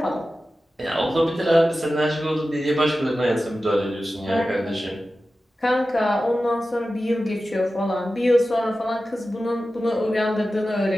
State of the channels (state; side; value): normal; both; correlation 0.94